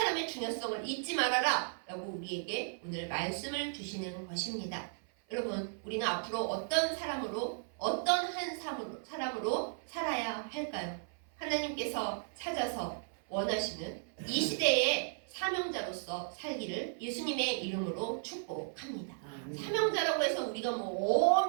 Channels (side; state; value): left; silent; 54 dB below the other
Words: 중요성을 잊지 말아라 라고 우리에게 오늘 말씀을 주시는 것입니다. 여러분, 우리는 앞으로 어떤 사람으로, 어떤 한 사람으로 살아야 할까요? 하나님께서 찾아서 원하시는 이 시대의 사명자로서 살기를 예수님의 이름으로 축복합니다. 사명자라고 해서 우리가 뭐